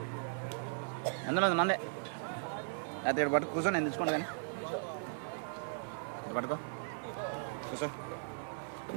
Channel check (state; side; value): silent; left; 53 dB below the other